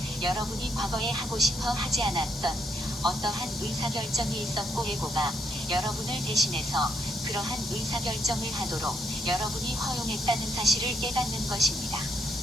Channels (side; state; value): both; normal; correlation 0.76